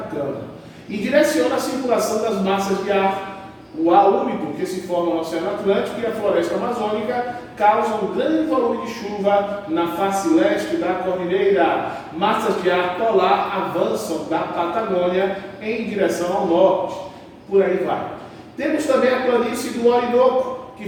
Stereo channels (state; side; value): identical; both; correlation 1.00